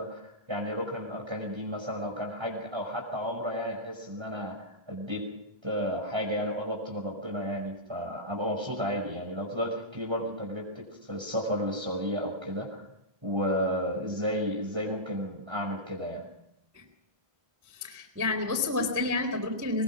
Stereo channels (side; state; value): left; late; 1.3 ms